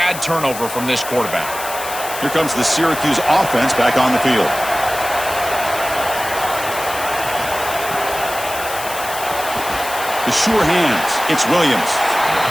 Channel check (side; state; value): left; noise; hiss, 9 dB below the sound